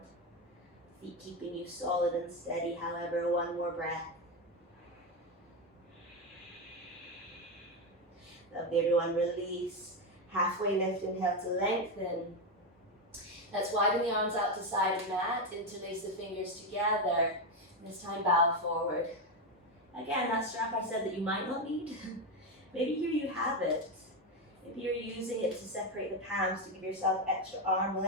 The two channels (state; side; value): normal; both; correlation 0.10